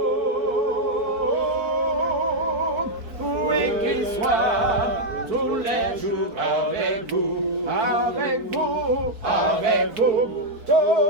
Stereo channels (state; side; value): late; left; 4.6 ms